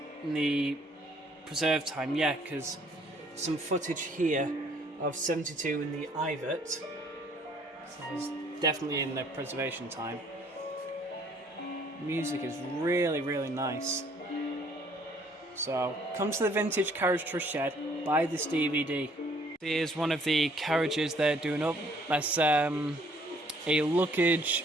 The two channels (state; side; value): normal; both; correlation 0.61